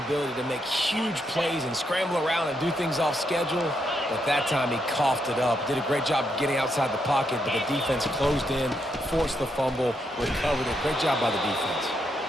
to make huge plays and scramble around and do things off schedule. But that time he coughed it up. Did a great job getting outside the pocket, but the defense closed in, forced the fumble, recovered it. Great job by the defense.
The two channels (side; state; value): both; normal; correlation 0.79